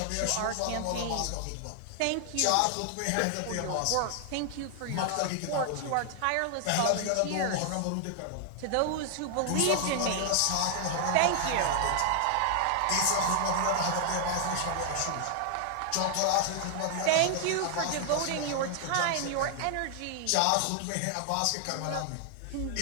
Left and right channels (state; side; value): different; both; correlation 0.00